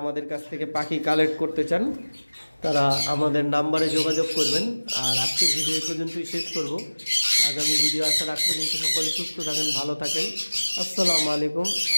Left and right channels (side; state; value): both; inverted; correlation -1.00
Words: কাছ থেকে পাখি কালেক্ট করতে চান তারা আমাদের নাম্বারে যোগাযোগ করবেন। আর আজকের ভিডিও এই পর্যন্তই শেষ করব। আগামী ভিডিও আসার আগ পর্যন্ত সকলে সুস্থ থাকেন, ভালো থাকেন। আসসালামু আলাইকুম,